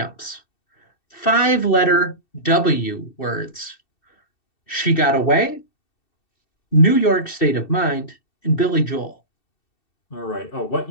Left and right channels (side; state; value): right; late; 2.7 ms